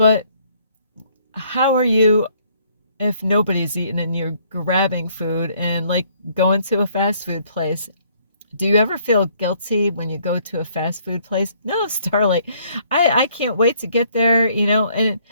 how are you if nobody's eating and you're grabbing food and like going to a fast food place? Do you ever feel guilty when you go to a fast food place? No, Starlight. I can't wait to get there, and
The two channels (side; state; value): both; inverted; correlation -0.64